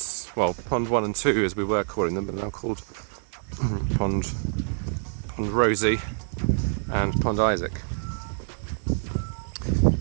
well, Pond 1 and 2 as we were calling them, but now called Pond Rosie and Pond Isaac.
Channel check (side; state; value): left; silent; digital silence